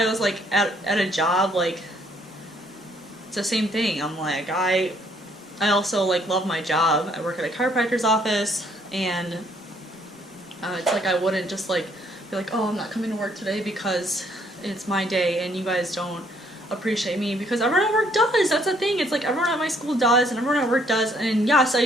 was like at a job, like, it's the same thing. I'm like, I also like love my job. I work at a chiropractor's office, and it's like I wouldn't just like be like, oh, I'm not coming to work today because it's my day and you guys don't appreciate me, because everyone at work does. That's the thing. It's like everyone at my school does and everyone at work does. And yes, I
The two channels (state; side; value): normal; both; correlation 0.66